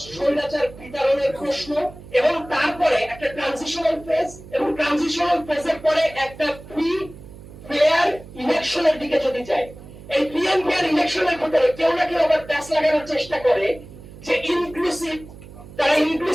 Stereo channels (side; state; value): right; noise; hum, 17 dB below the sound